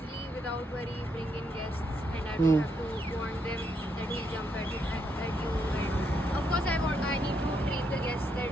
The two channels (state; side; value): normal; both; correlation 0.77